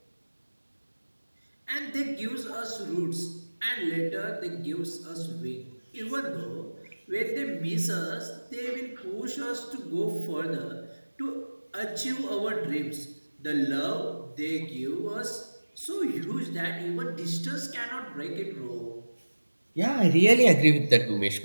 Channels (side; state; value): both; inverted; correlation -1.00